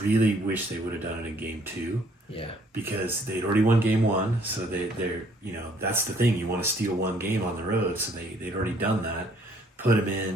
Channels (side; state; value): both; normal; correlation 0.62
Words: really wish they would have done it in game 2. Yeah. Because they'd already won game 1, so they're that's the thing. You want to steal one game on the road, so they'd already done that. Put him